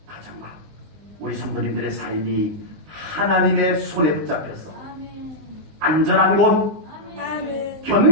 가정과 우리 성도님들의 삶이 하나님의 손에 붙잡혀서 안전한 곳, 아멘.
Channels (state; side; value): late; left; 19 ms